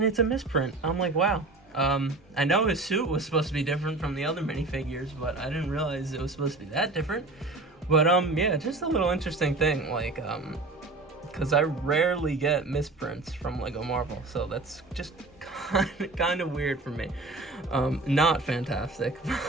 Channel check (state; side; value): quieter; left; 3.2 dB